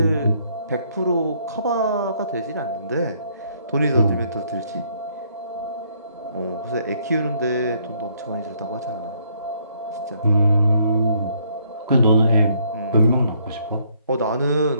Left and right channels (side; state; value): both; inverted; correlation -0.68